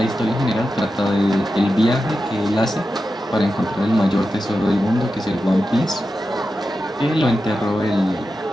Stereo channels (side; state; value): both; normal; correlation 0.91